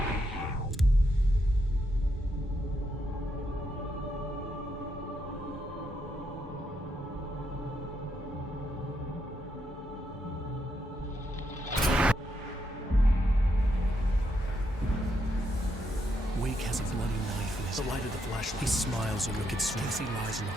Wake has a bloody knife in his light of the flashlight. He smiles and wicked Stacy lies in the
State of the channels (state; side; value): normal; both; correlation 0.79